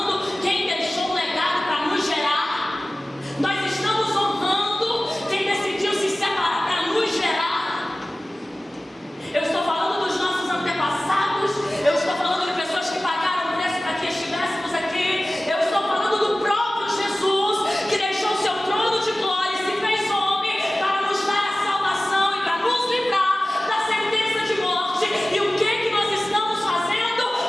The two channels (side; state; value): both; normal; correlation 0.97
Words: quem deixou um legado para nos gerar? Nós estamos honrando quem decidiu se separar para nos gerar? Eu estou falando dos nossos antepassados. Eu estou falando de pessoas que pagaram o preço para que estivéssemos aqui. Eu estou falando do próprio Jesus, que deixou o seu trono de glória e se fez homem para nos dar a salvação e para nos livrar da sentença de morte. E o que nós estamos fazendo